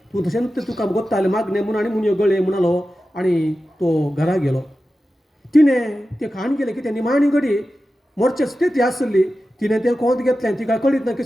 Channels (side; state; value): both; normal; correlation 0.93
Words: तूं तशें तुका कोत्तालें मागणें म्हणून आनी मुनयो गळे म्हणलो आनी तो घरा गेलो तिणें तें खाण गेलें की तें निमाणी घडी मोरचे स्थिती आसली तिणें तें कोंत घेतलें तिका कळीत ना